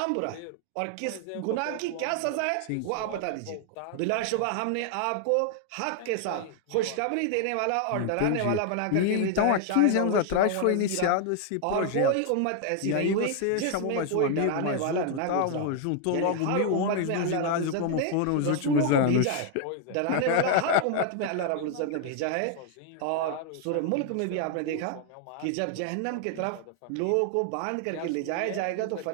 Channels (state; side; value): different; both; correlation 0.00